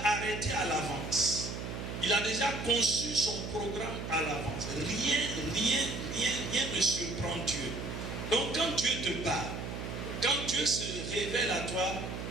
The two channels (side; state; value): right; noise; hum, 6 dB below the sound